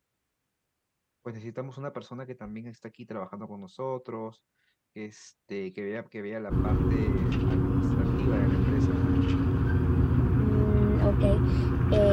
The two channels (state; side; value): identical; both; correlation 1.00